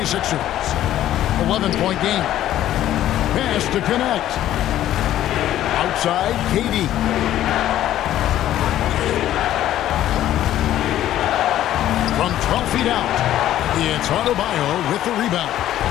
11-point game. Pass to connect. Outside, KD. From 12 feet out, it's Adebayo with the rebound.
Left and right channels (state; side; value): quieter; right; 12.7 dB